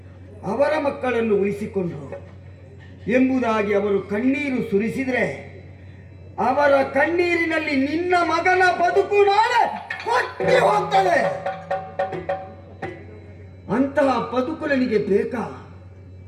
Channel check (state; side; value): identical; both; correlation 1.00